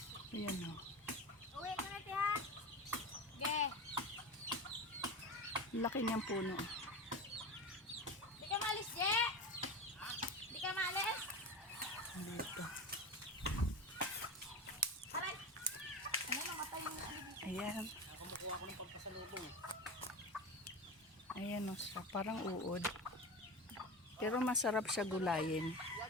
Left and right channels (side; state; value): both; normal; correlation 0.25